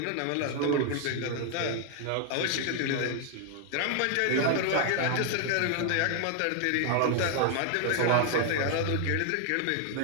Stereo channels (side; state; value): both; different; correlation 0.00